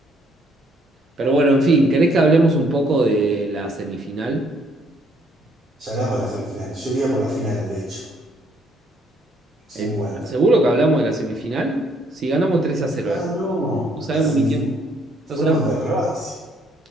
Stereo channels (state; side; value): normal; both; correlation 0.67